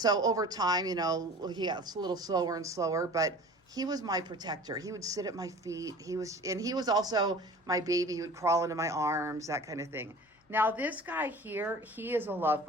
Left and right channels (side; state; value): both; normal; correlation 0.42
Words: over time, he got a little slower and slower, but he was my protector. He would sit at my feet. He was also my baby. He would crawl into my arms, that kind of thing. Now this guy here, he is a love